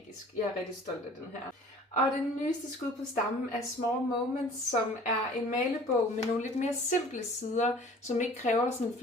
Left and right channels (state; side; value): normal; both; correlation 0.48